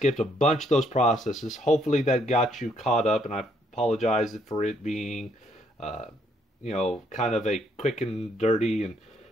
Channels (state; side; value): normal; both; correlation 0.70